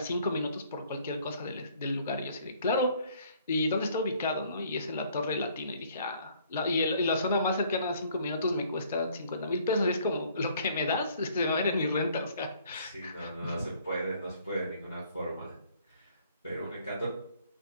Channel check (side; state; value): both; inverted; correlation -0.60